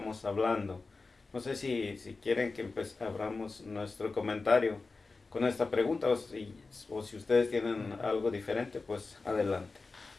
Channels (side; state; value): right; quieter; 3.9 dB